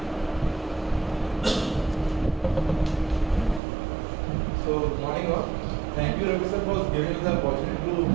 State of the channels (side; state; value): left; drops out; at 3.6 s